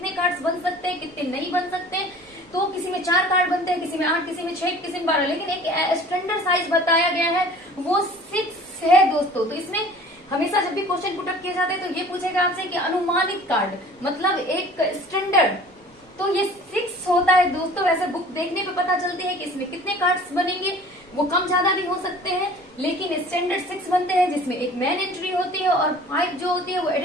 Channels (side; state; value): both; normal; correlation 0.47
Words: कार्ड्स बन सकते हैं, कितने नहीं बन सकते। तो किसी में 4 कार्ड बनते हैं, किसी में 8, किसी में 6, किसी में 12, लेकिन एक स्टैंडर्ड साइज बताया गया है वो 6 है दोस्तों। तो इसमें हमेशा जब भी क्वेश्चन पुटअप किए जाते हैं तो ये पूछेगा आपसे कि अनुमानित कार्ड मतलब एक स्टैंडर्ड, तो ये 6 होता है दोस्तों। वैसे बुक देखने पे पता चलती है कि इसमें कितने कार्ड्स बनेंगे, वो कम ज्यादा भी हो सकते हैं, लेकिन स्टैंडर्ड 6 बनते हैं, जिसमें एक मेन एंट्री होती है और 5 जो होती है वो